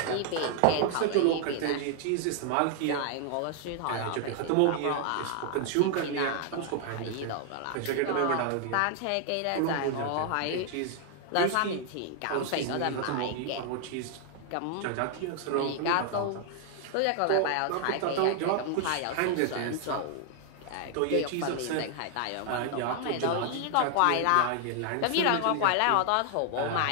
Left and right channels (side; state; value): both; different; correlation 0.00